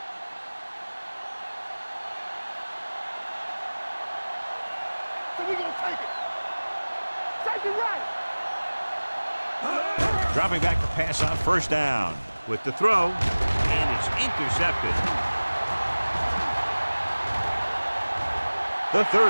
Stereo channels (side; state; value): both; inverted; correlation -1.00